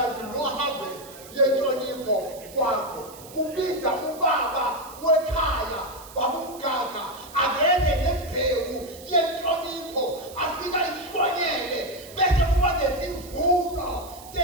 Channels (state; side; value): noise; right; hiss, 18 dB below the sound